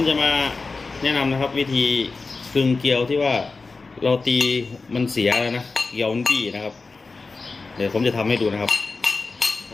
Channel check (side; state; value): right; quieter; 4.0 dB